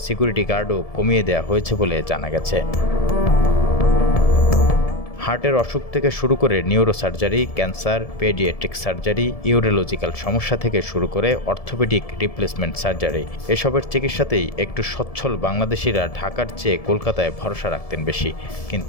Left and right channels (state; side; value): late; right; 1.7 ms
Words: সিকিউরিটি গার্ডও কমিয়ে দেওয়া হয়েছে বলে জানা গেছে। হার্টের অসুখ থেকে শুরু করে neuro surgery, cancer, paediatric surgery, urological সমস্যা থেকে শুরু করে অর্থোপেডিক রিপ্লেসমেন্ট সার্জারি, এসবের চিকিৎসাতেই একটু সচ্ছল বাংলাদেশিরা ঢাকার চেয়ে কলকাতায় ভরসা রাখতেন বেশি।